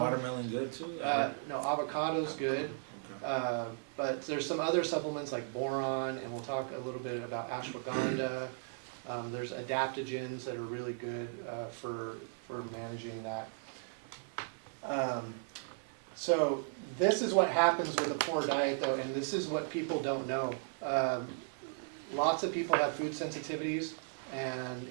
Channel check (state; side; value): silent; left; digital silence